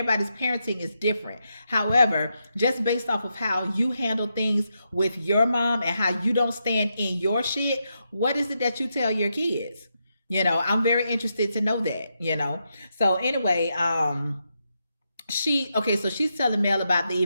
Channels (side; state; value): both; inverted; correlation -0.83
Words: parenting is different. However, just based off of how you handle things with your mom and how you don't stand in your shit, what is it that you tell your kids? I'm very interested to know that. So anyway, so she's telling Mel about the